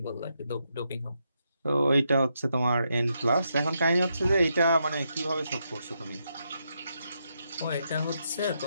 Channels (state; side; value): inverted; both; correlation -0.81